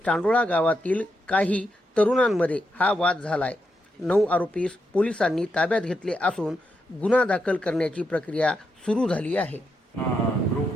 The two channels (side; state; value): both; normal; correlation 0.83